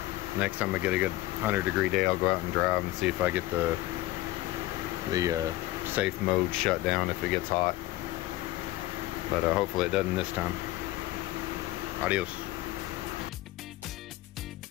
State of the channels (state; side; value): quieter; right; 16.9 dB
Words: Next time I get a good 100-degree day, I'll go out and drive and see if I get the safe mode shut down if it gets hot. But hopefully it doesn't this time. Adios.